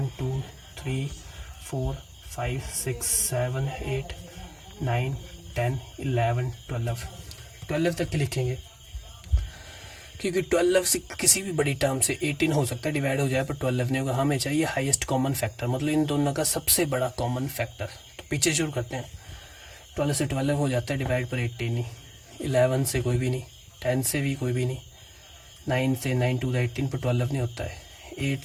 2 3 4 5 6 7 8 9 10 11 12 तक के लिखेंगे, क्योंकि 12 से किसी भी बड़ी टर्म से 18 हो सकता है डिवाइड हो जाए, पर 12 नहीं होगा। हमें चाहिए हाईएस्ट कॉमन फैक्टर, मतलब इन दोनों का सबसे बड़ा कॉमन फैक्टर। तो पीछे शुरू करते हैं। 12 से 12 हो जाता है डिवाइड, पर 18 नहीं। 11 से कोई भी नहीं, 10 से भी कोई भी नहीं, 9 से 9 2 द 18 पर 12 नहीं होता है। 8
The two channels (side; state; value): both; identical; correlation 1.00